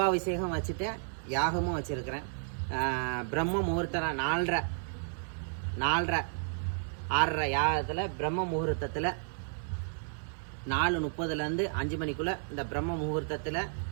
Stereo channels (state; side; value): silent; left; 56 dB below the other